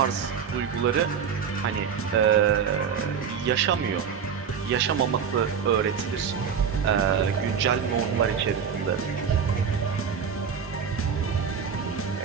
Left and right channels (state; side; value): quieter; left; 7.0 dB